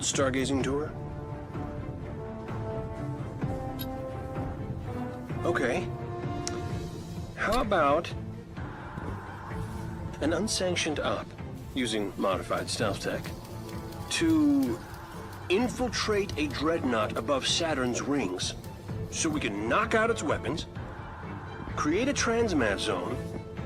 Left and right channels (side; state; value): both; identical; correlation 1.00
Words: tour? Okay. How about an unsanctioned op using modified stealth tech to infiltrate a dreadnought above Saturn's rings so we can knock out its weapons, create a transmat zone,